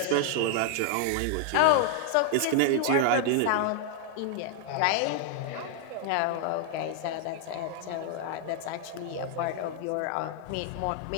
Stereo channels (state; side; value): different; both; correlation 0.00